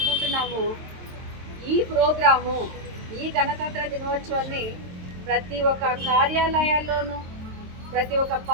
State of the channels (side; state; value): left; late; 23 ms